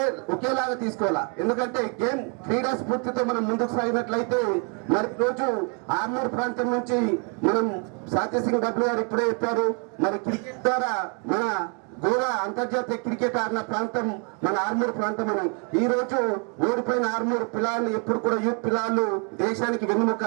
ఒకేలాగా తీసుకోవాలా. ఎందుకంటే గేమ్ క్రీడా స్ఫూర్తితో మనం ముందుకు సాగినట్లయితే మరి రోజు ఆర్మూర్ ప్రాంతం నుంచి మనం సంజయ్ సింగ్ బబ్లు గారు ఇప్పుడే చెప్పారు, మరి క్రికెట్ ద్వారా మన గోవా అంతర్జాతీయ క్రికెట్ ఆడిన ప్రాంతం మన ఆర్మూర్ ప్రాంతం అని. ఈ రోజు ఓడిపోయిన ఆర్మూర్ పిల్లలు ఎప్పుడు కూడా యూత్ పిల్లలు దేశానికి వెన్నుముక.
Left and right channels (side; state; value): left; quieter; 36.7 dB